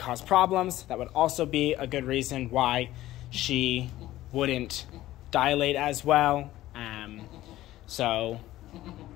problems. That would also be a good reason why she wouldn't dilate as well. So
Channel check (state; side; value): quieter; right; 15.3 dB